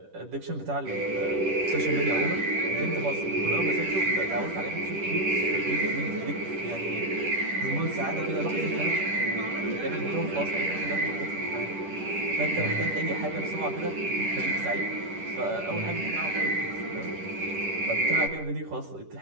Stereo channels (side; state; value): left; late; 10 ms